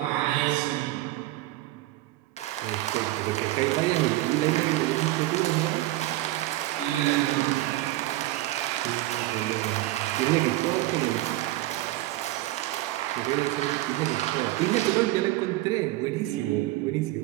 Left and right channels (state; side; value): quieter; left; 17.1 dB